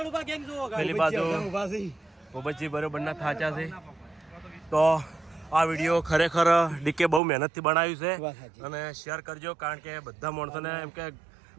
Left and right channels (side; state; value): left; drops out; at 7.2 s